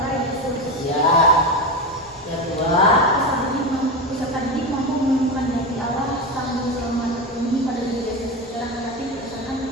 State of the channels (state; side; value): normal; both; correlation 0.18